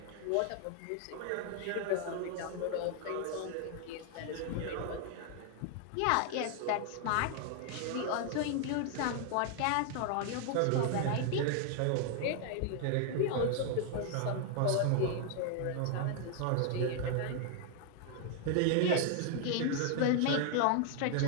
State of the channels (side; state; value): both; different; correlation 0.00